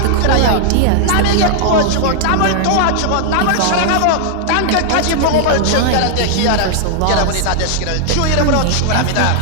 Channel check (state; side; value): different; both; correlation 0.00